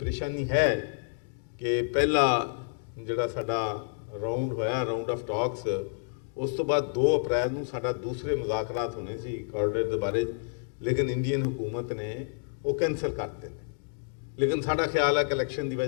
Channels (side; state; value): right; silent; digital silence